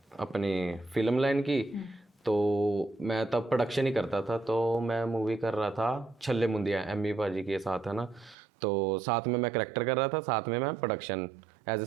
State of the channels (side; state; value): left; drops out; at 8.3 s